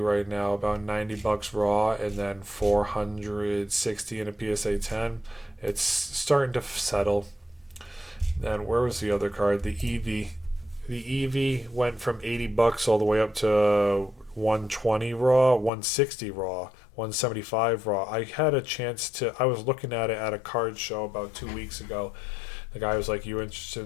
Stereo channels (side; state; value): right; drops out; at 15.7 s